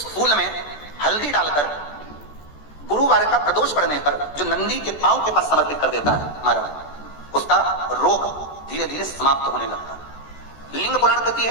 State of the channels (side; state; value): right; late; 14 ms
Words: फूल में हल्दी डालकर गुरुवार का प्रदोष पड़ने पर जो नंदी के पांव के पास समर्पित कर देता है महाराज, उसका रोग धीरे धीरे समाप्त होने लगता है। लिंग पुराण कहती है